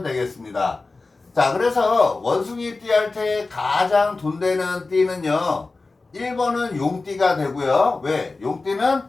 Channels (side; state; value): right; quieter; 3.6 dB